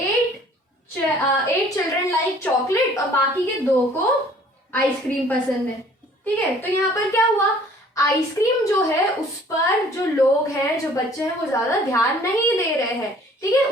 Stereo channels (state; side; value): normal; both; correlation 0.54